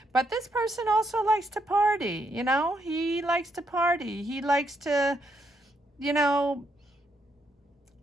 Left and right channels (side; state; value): both; normal; correlation 0.77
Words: But this person also likes to party, he likes to party. He likes to,